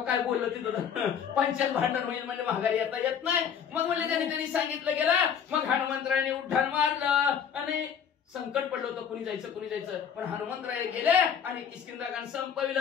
काय बोललं तिथं पंचायत भांडण होईल म्हणजे माघारी येत नाही. मग म्हणले त्यांनी सांगितलं गेलं. मग हनुमंतरायाने उड्डाण मारलं आणि संकट पडलं होतं कुणी जायचं पण हनुमंतराय गेले आणि किष्किंधा कांड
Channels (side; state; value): right; quieter; 7.8 dB